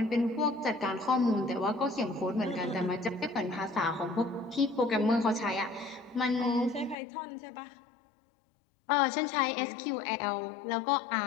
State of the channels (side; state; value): right; drops out; at 7.0 s